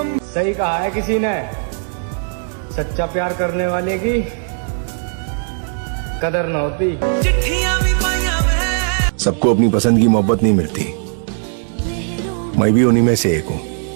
सही कहा है किसी ने, सच्चा प्यार करने वाले की कदर न होती। सबको अपनी पसंद की मोहब्बत नहीं मिलती, मैं भी उन्हीं में से एक हूँ।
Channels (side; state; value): left; silent; digital silence